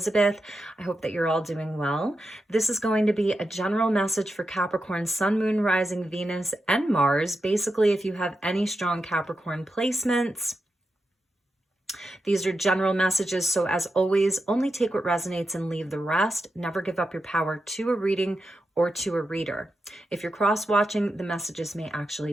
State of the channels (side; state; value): both; normal; correlation 0.88